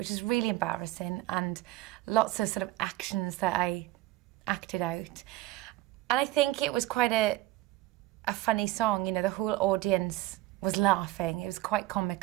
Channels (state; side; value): quieter; left; 17.4 dB